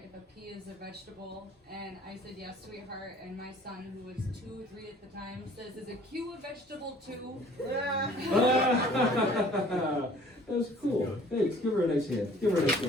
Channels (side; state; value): both; normal; correlation 0.53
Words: if a pea is a vegetable, and I said yes, sweetheart. And my son, who was 2, 3 at the time, says, "Is a Q a vegetable too?" That's cool. Thanks. Give her a nice hand. Give her a nice